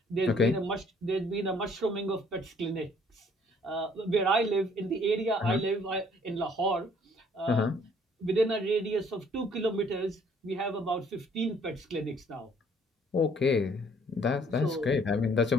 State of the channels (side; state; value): both; normal; correlation 0.61